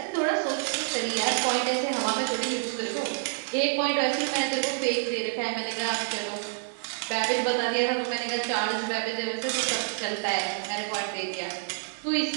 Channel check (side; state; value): left; silent; digital silence